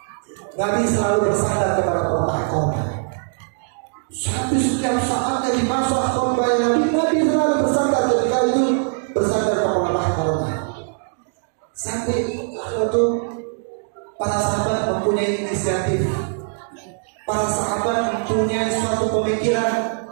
Nabi selalu bersandar kepada pelepah korma. Sampai setiap saatnya di masa khutbah Nabi selalu bersandar, ketika itu bersandar ke pelepah korma. Sampai waktu para sahabat mempunyai inisiatif, para sahabat mempunyai suatu pemikiran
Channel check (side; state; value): left; silent; 65 dB below the other